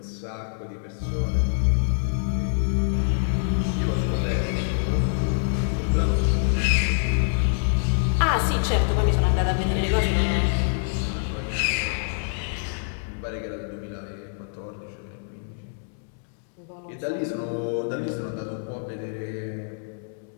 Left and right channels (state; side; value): silent; right; digital silence